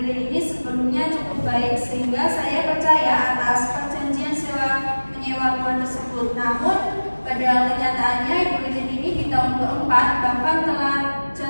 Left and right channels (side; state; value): both; inverted; correlation -1.00